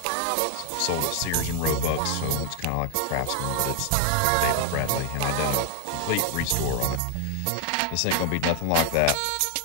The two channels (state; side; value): different; both; correlation 0.00